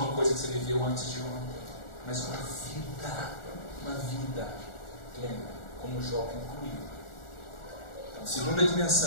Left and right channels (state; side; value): late; right; 1.4 ms